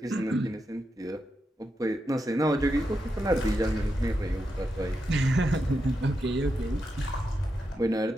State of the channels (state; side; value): normal; both; correlation 0.86